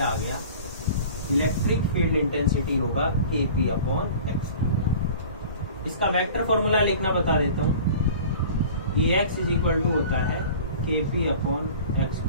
आ गया, इलेक्ट्रिक फील्ड इंटेंसिटी होगा kp अपॉन एक्स। इसका वेक्टर फॉर्मूला लिखना बता देता हूँ। Ex इज इक्वल टू होता है kp अपॉन एक्स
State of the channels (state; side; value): inverted; both; correlation -0.42